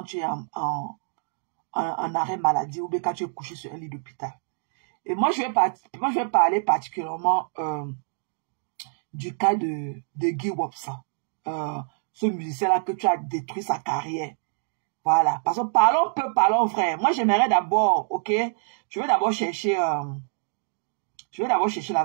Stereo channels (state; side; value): silent; left; digital silence